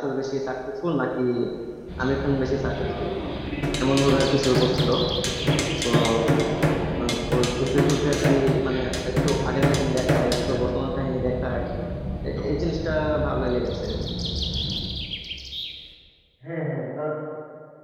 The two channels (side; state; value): both; identical; correlation 1.00